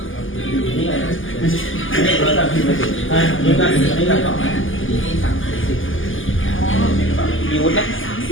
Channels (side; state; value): right; late; 0.58 ms